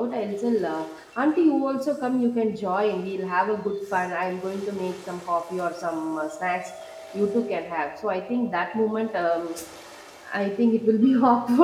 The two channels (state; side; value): identical; both; correlation 1.00